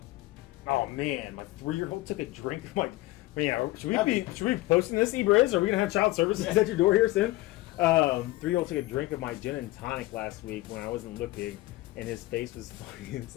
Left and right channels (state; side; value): quieter; right; 18.7 dB